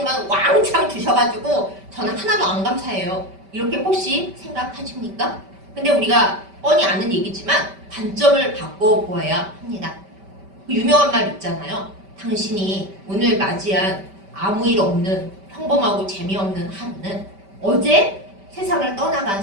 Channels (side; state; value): left; late; 5.1 ms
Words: 왕창 주셔가지고 저는 하나도 안 감사해요. 이렇게 혹시 생각하십니까? 근데 우리가 뻔히 아는 얘기지만 관점을 바꿔보아야 합니다. 그 유명한 말 있잖아요. 당신이 오늘 맞이한 아무 일 없는 평범하고 재미없는 하루는 어제 세상을 떠나간